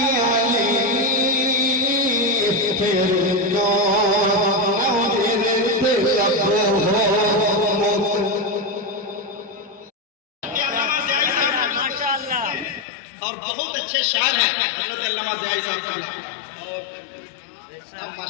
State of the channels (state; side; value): drops out; right; at 12.9 s